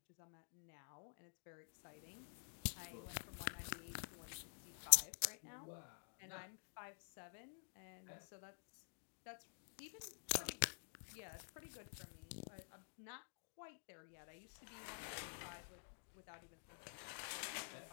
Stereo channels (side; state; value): right; silent; digital silence